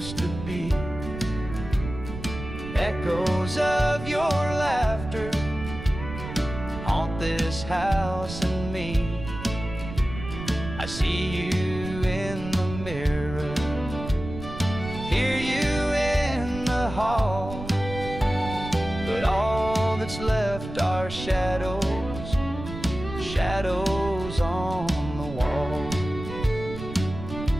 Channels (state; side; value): noise; right; rumble, 10 dB below the sound